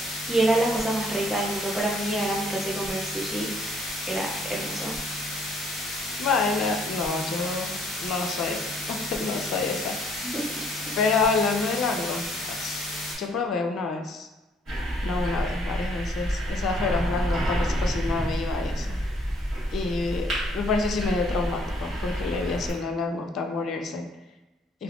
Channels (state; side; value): normal; both; correlation 0.64